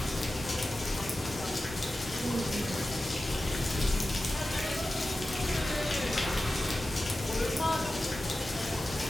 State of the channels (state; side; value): normal; both; correlation 0.94